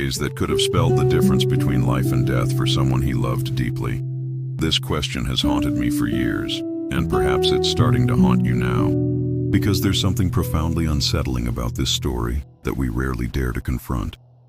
that could have spelled the difference between life and death for someone he loved deeply. This question has haunted me for years, and perhaps it's starting to haunt you now, because there's something profoundly unsettling about this story that we rarely dare to confront.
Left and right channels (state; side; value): identical; both; correlation 1.00